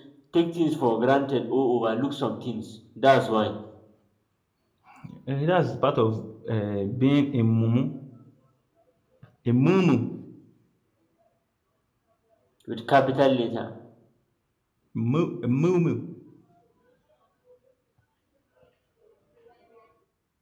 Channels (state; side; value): identical; both; correlation 1.00